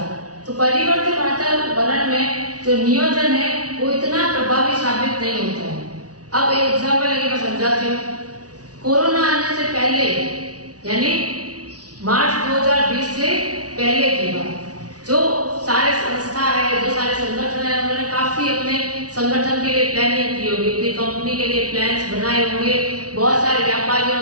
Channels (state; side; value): late; left; 0.68 ms